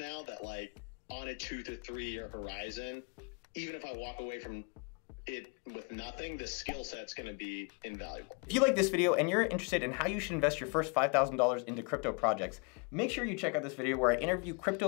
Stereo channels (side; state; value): right; quieter; 34.7 dB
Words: that like on a 2 to 3 year horizon, even if I walk away from it with nothing, the skill set's going to be invaluable. If you like this video and you're interested in how you should invest your first $5,000 into crypto projects, make sure you check out this video where I interview